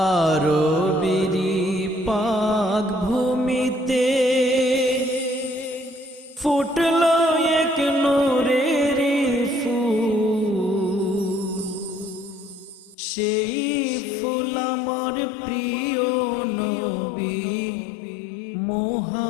পাক ভূমিতে ফুটল এক নূরের ফুল, সেই ফুল আমার প্রিয় নবী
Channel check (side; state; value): right; drops out; at 13.0 s